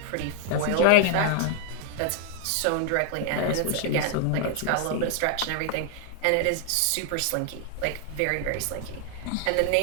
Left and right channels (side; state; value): both; different; correlation 0.00